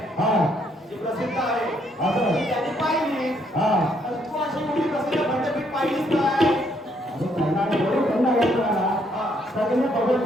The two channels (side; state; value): both; normal; correlation 0.71